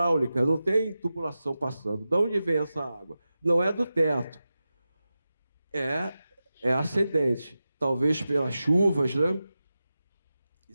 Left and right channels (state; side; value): inverted; both; correlation -0.93